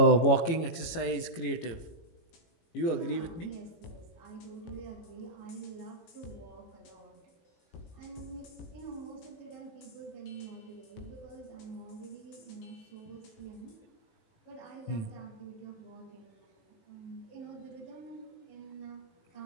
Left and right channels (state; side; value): late; right; 18 ms